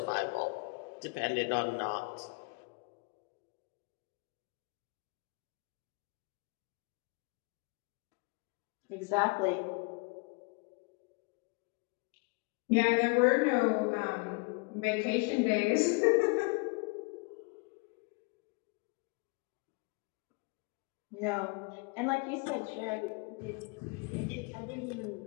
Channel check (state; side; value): quieter; right; 30.3 dB